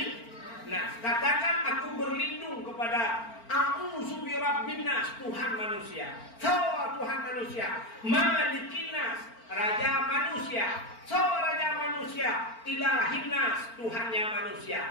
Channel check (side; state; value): right; late; 4.4 ms